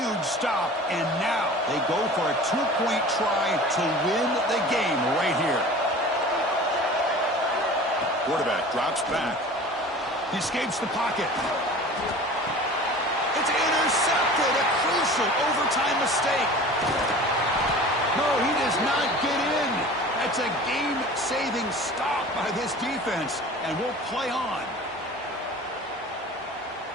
stop, and now they go for a two-point try to win the game right here. Quarterback drops back. He escapes the pocket. It's intercepted, a crucial overtime mistake. No, he does not get in. That's a game-saving stop by this defense, and we'll play on.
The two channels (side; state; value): both; normal; correlation 0.41